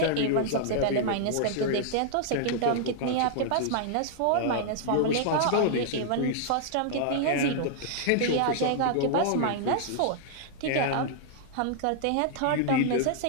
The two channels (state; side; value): different; both; correlation -0.01